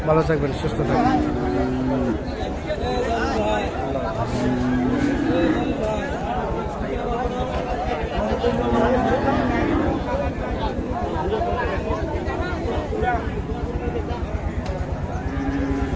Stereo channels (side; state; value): both; identical; correlation 1.00